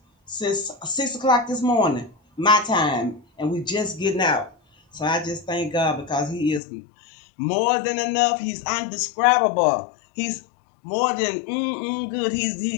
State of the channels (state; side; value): drops out; right; at 6.6 s